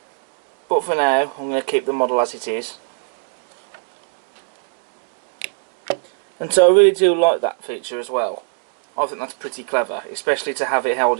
But for now, I'm going to keep the model as it is. And so I really do like that feature as well. I think that's pretty clever, especially to have it held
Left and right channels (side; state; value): left; silent; digital silence